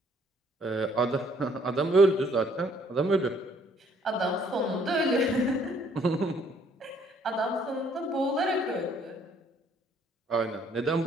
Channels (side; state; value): both; normal; correlation 0.64